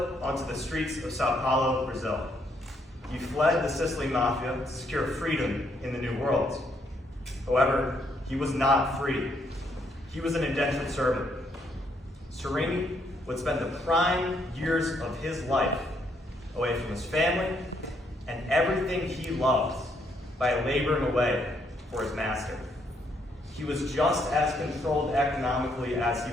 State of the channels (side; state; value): both; normal; correlation 0.72